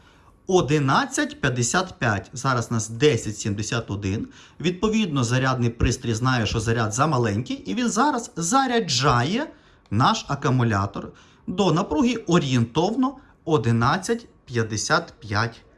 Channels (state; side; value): identical; both; correlation 1.00